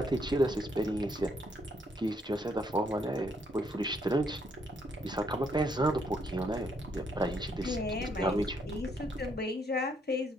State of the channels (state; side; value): normal; both; correlation 0.72